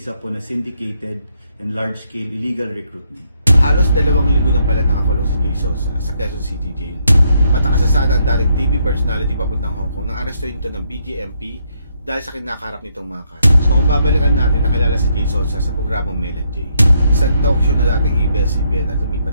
po na syndicated and large-scale illegal recruitment. Halos 2 linggo na pala nakakulong si Jason sa Quezon City Jail. Matakasasada ang dating TV personality papuntang Hong Kong nang arestuhin ito ng BJMP dahil sa kinakaharap nitong mga kaso. So kung babalikan natin, nakilala si Jason sa programang Mel and Jay, isang talk show na dating ABS-CBN at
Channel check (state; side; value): inverted; both; correlation -0.74